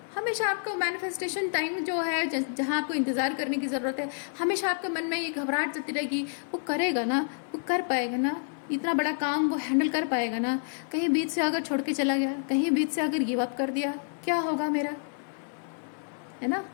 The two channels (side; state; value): right; silent; 59 dB below the other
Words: हमेशा आपका मैनिफेस्टेशन टाइम जो है जहाँ आपको इंतज़ार करने की ज़रूरत है, हमेशा आपके मन में ये घबराहट चलती रहेगी, वो करेगा ना, वो कर पाएगा ना, इतना बड़ा काम वो हैंडल कर पाएगा ना, कहीं बीच से अगर छोड़ के चला गया, कहीं बीच से अगर गिव अप कर दिया, क्या होगा मेरा, है ना?